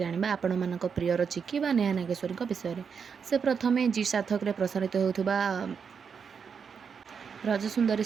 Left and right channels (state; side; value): quieter; left; 6.4 dB